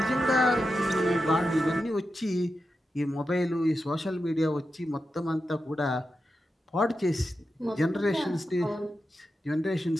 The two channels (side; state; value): both; normal; correlation 0.89